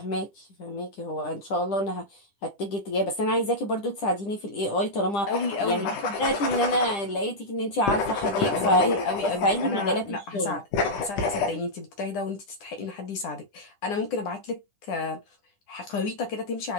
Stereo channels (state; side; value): late; right; 10 ms